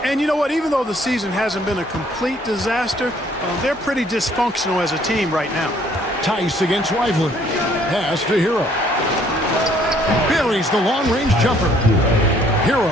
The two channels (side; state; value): both; normal; correlation 0.62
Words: And you know what? Even though the season hasn't been a complete disaster, they're pretty dysfunctional as a team right now. Tice against Lively. Pass to Hero. Buries the long-range jumper.